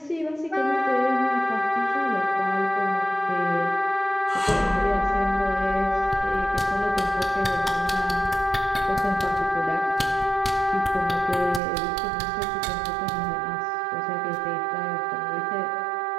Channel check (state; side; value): drops out; left; at 11.6 s